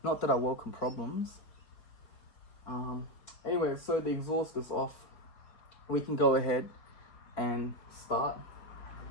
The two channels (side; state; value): right; late; 4.7 ms